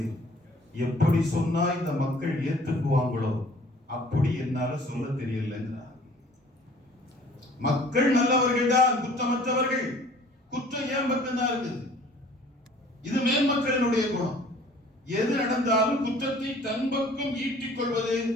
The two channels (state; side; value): normal; both; correlation 0.52